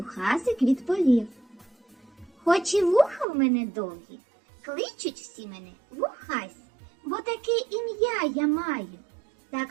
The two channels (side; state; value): left; drops out; at 3.2 s